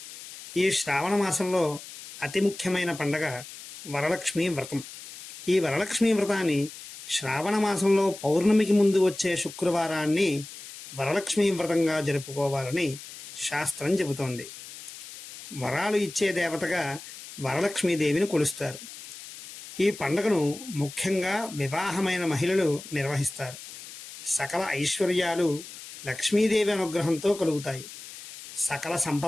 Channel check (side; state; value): left; noise; hiss, 14 dB below the sound